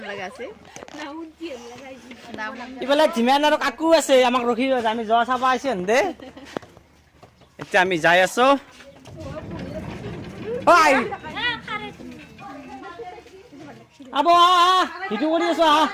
ইফালে ধীমান আৰু কাকু আছে, আমাক ৰখি আমি যোৱা চাব আহিছে দে। এতিয়া আমি যাই আছো। আব ভিডিঅ' কৰি আছো আহ।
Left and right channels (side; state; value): both; identical; correlation 1.00